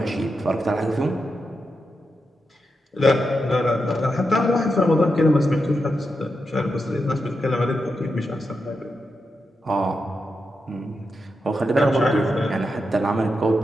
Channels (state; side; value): normal; both; correlation 0.87